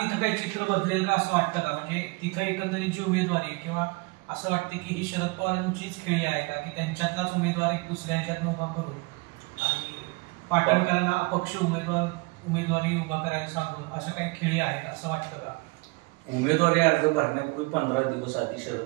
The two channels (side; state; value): left; quieter; 26.5 dB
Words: काही चित्र बदलेल का असं वाटतं का? म्हणजे तिथं एकंदरीत जी उमेदवारी किंवा असं वाटतं की ही शरद पवारांचीच खेळी आहे का की त्यांच्यातलाच उमेदवार एक दुसऱ्या ह्याच्यात उभा करून आणि पाटणकरांना अपक्ष उमेदवारी उभा करायला सांगून असं काही खेळी आहे असं वाटतं का? उमेदवारी अर्ज भरण्यापूर्वी 15 दिवस आधी